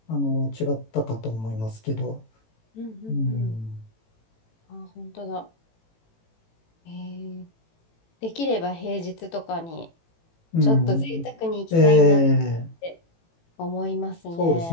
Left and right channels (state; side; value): late; right; 18 ms